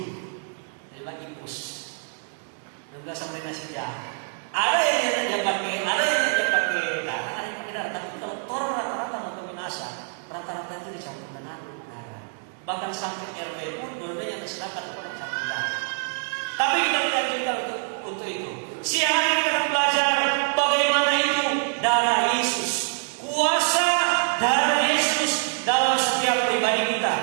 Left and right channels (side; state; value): left; silent; 61 dB below the other